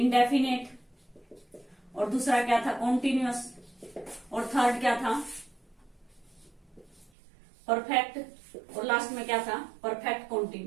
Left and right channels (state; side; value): drops out; left; at 7.1 s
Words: और दूसरा क्या था? कॉन्टिन्यूअस, और थर्ड क्या था? परफेक्ट, और लास्ट में क्या था? Perfect